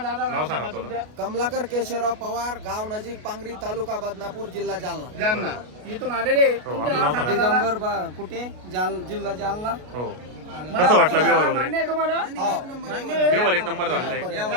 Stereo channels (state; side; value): late; left; 33 ms